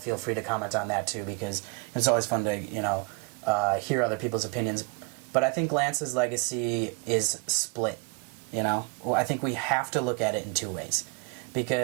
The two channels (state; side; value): quieter; left; 30.6 dB